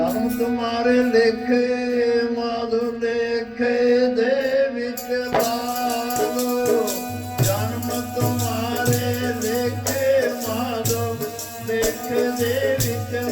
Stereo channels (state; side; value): identical; both; correlation 1.00